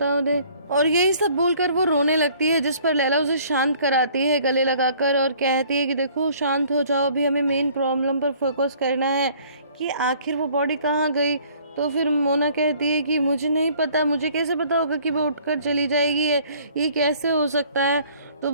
उन्हें। और यही सब बोलकर वो रोने लगती है, जिस पर लैला उसे शांत कराती है गले लगाकर और कहती है कि देखो शांत हो जाओ, अभी हमें मेन प्रॉब्लम पर फोकस करना है कि आखिर वो बॉडी कहाँ गई। तो फिर मोना कहती है कि मुझे नहीं पता, मुझे कैसे पता होगा कि वो उठकर चली जाएगी, ये कैसे हो सकता है? तो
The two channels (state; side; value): inverted; both; correlation -0.56